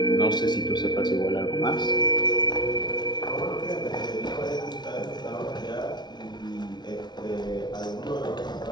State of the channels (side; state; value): right; late; 0.20 ms